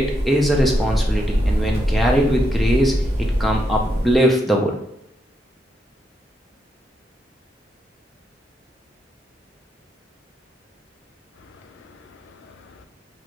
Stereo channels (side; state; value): both; normal; correlation 0.81